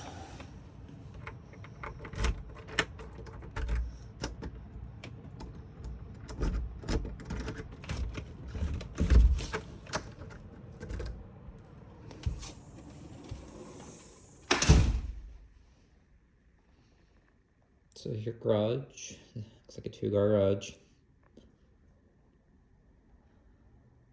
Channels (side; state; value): both; identical; correlation 1.00